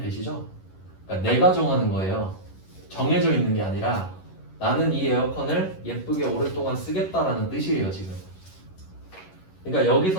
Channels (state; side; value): late; right; 11 ms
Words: 그러니까 내가 정하는 거예요. 정해져 있는 게 아니라 나는 이 에어컨을 예쁘게 오랫동안 쓰겠다라는 뜻이에요, 지금. 그러니까